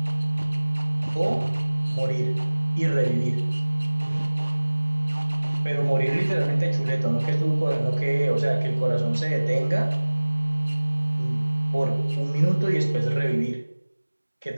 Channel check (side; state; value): both; inverted; correlation -1.00